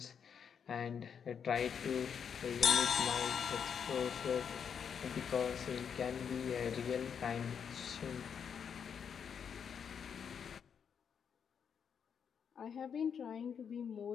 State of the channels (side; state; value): right; quieter; 7.3 dB